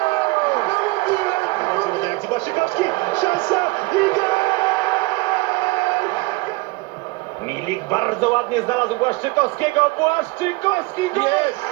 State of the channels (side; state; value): left; quieter; 24.3 dB